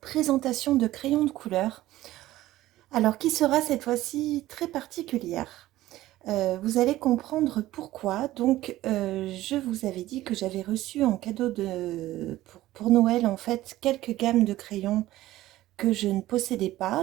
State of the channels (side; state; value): left; quieter; 15.8 dB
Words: de crayons de couleur, alors qui sera cette fois-ci très particulière. Vous allez comprendre pourquoi. Je vous avais dit que j'avais reçu en cadeau pour Noël en fait quelques gammes de crayons que je ne possédais